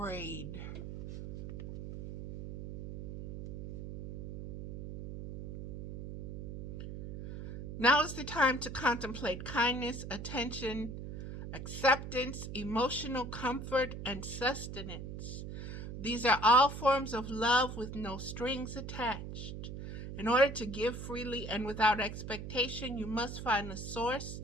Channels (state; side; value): noise; right; hum, 8 dB below the sound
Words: Now is the time to contemplate kindness, attention, acceptance, emotional comfort, and sustenance. These are all forms of love with no strings attached. In order to give freely and without expectation, you must find the source